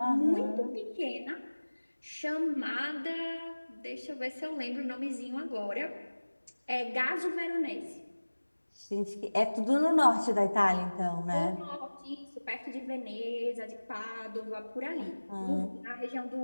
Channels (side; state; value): both; inverted; correlation -1.00